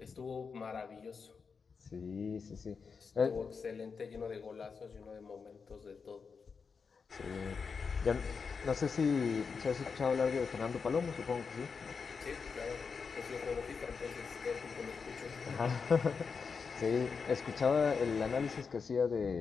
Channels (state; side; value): quieter; right; 5.4 dB